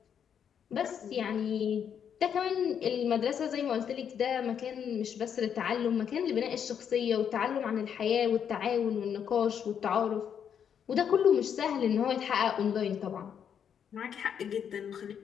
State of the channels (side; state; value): right; quieter; 8.1 dB